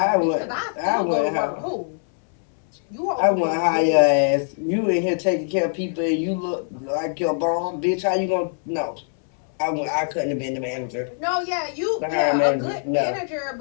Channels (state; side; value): silent; right; 63 dB below the other